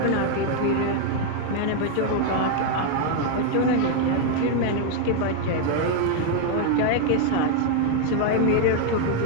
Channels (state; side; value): different; both; correlation 0.00